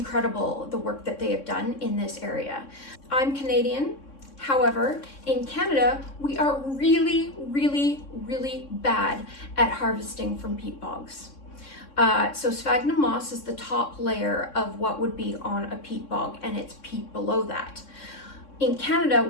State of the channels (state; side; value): late; right; 3.6 ms